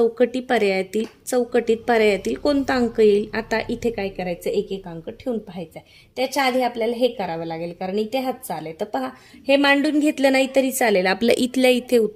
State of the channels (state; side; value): identical; both; correlation 1.00